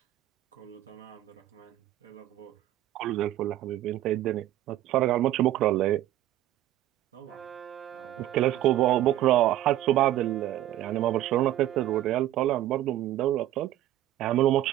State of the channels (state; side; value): quieter; left; 13.4 dB